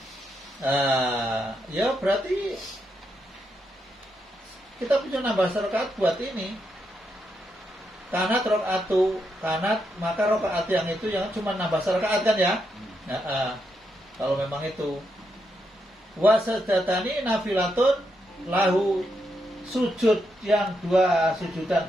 Ya berarti kita punya nambah rakaat buat ini. Kanat rok'atu, kanat, maka rakaat yang itu yang cuma nambah rakaat kan ya? Kalau memang itu. Wasadatani nafilatun lahu, sujud yang 2 sujudan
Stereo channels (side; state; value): both; normal; correlation 0.82